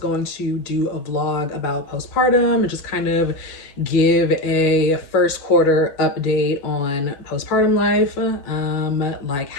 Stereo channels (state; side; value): late; right; 7.0 ms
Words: to do a vlog about postpartum and just kind of give a first quarter update on postpartum life, like